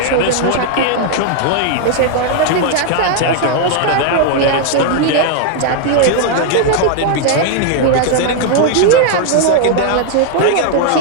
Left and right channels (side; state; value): both; different; correlation 0.00